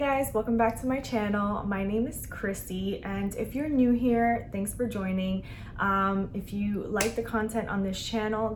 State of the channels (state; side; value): identical; both; correlation 1.00